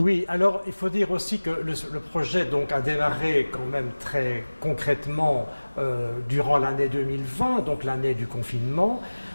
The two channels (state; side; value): inverted; both; correlation -1.00